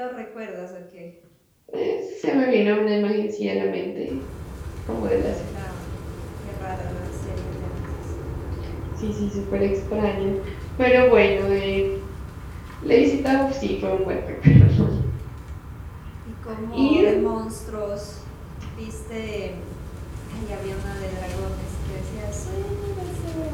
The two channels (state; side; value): identical; both; correlation 1.00